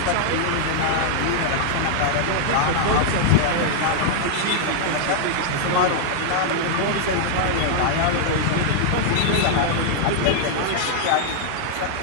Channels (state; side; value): different; both; correlation -0.01